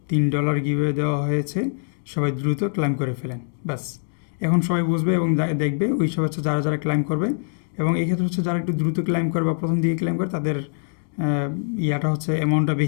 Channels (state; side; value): silent; right; digital silence